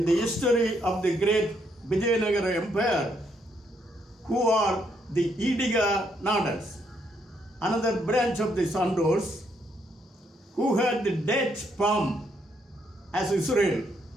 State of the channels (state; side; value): normal; both; correlation 0.74